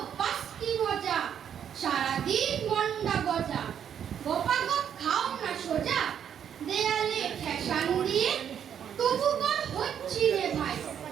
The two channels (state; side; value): quieter; left; 8.8 dB